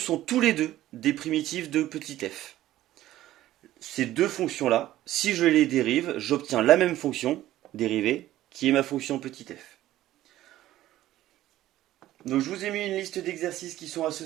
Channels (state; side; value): quieter; left; 14.4 dB